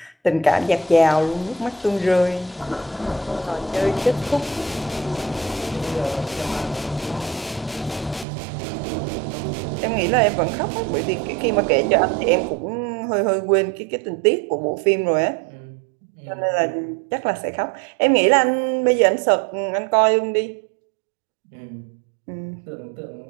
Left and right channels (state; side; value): drops out; left; at 8.2 s